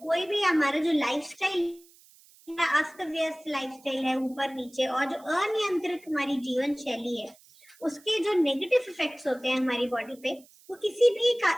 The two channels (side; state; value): right; noise; hiss, 27 dB below the sound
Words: भी हमारा जो लाइफस्टाइल अस्त व्यस्त लाइफस्टाइल है ऊपर नीचे और जो अनियंत्रित हमारी जीवन शैली है, उसके जो नेगेटिव इफेक्ट्स होते हैं हमारी बॉडी पे, वो किसी